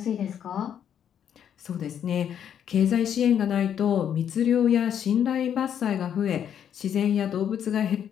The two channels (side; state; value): right; quieter; 9.1 dB